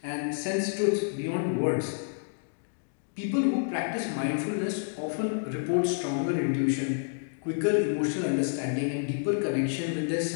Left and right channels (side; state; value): right; silent; digital silence